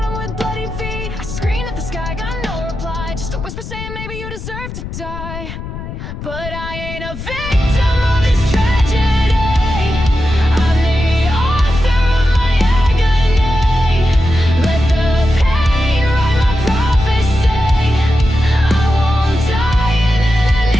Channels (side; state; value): left; noise; rumble, 10 dB below the sound